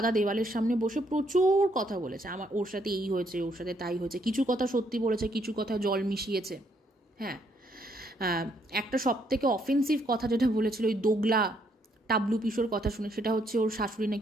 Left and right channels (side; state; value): both; normal; correlation 0.71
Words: দেওয়ালের সামনে বসে প্রচুর কথা বলেছে। ওর সাথে এই হয়েছে, ওর সাথে তাই হয়েছে। কিছু কথা সত্যি বলেছে, কিছু কথা জল মিশিয়েছে। হ্যাঁ, একটা সব থেকে অফেন্সিভ কথা যেটা বলেছিল ওই দোগলা টাবলু পিসোর কথা শুনে, সেটা হচ্ছে ওর শাশুড়ি